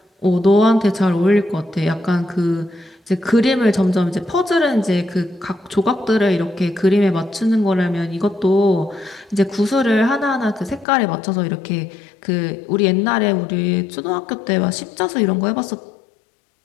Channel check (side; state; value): right; drops out; at 10.9 s